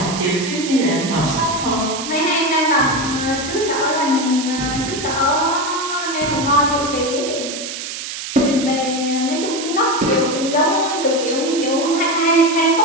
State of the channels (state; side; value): noise; right; hiss, 7 dB below the sound